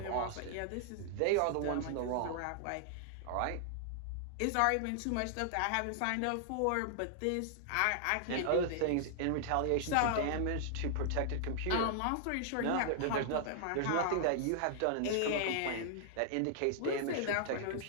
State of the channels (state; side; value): different; both; correlation -0.01